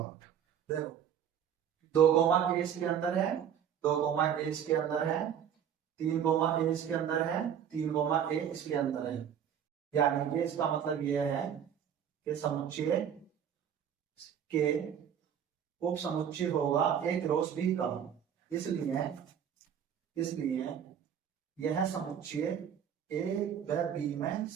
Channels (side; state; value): left; quieter; 8.8 dB